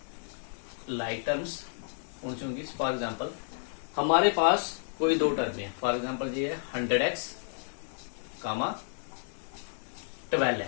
लाइक टर्म्स कौन सी होंगी? फॉर एग्जाम्पल हमारे पास कोई दो टर्म है, फॉर एग्जाम्पल ये है 100x कामा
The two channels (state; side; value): silent; right; digital silence